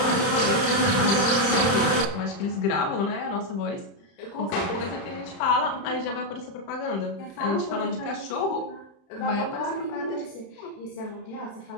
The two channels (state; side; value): late; right; 30 ms